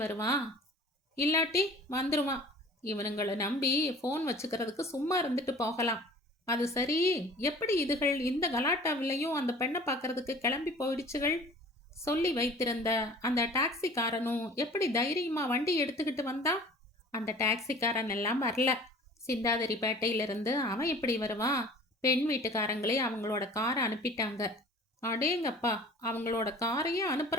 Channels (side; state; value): both; normal; correlation 0.46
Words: வருவான்? இல்லாட்டி வந்துருவான். இவனுங்களை நம்பி ஃபோன் வச்சுக்கிறதுக்கு சும்மா இருந்துட்டு போகலாம். அது சரி, எப்படி இதுகள் இந்த கலாட்டாவிலையும் அந்த பெண்ணை பார்க்கறதுக்கு கிளம்பி போயிடுச்சுகள்? சொல்லி வைத்திருந்த அந்த டாக்ஸிக்காரனும் எப்படி தைரியமா வண்டி எடுத்துக்கிட்டு வந்தான்? அந்த டாக்ஸிக்காரன் எல்லாம் வரல. சிந்தாதிரிப்பேட்டையிலிருந்து அவன் எப்படி வருவான்? பெண் வீட்டுக்காரங்களே அவங்களோட காரை அனுப்பிட்டாங்க. அடேங்கப்பா, அவங்களோட காரையே